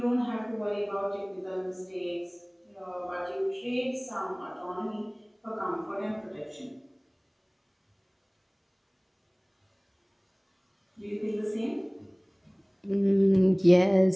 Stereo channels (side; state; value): both; identical; correlation 1.00